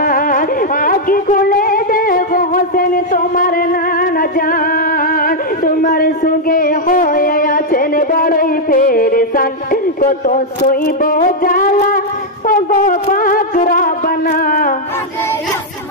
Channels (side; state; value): both; normal; correlation -0.02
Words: আগে খুলে দেখো হোসেন তোমার নানা জান, তোমার সঙ্গে হয়ে আছেন বড়ই পেরেশান, কত সইব জ্বালা ও গো পাক রব্বানা। কাঁদে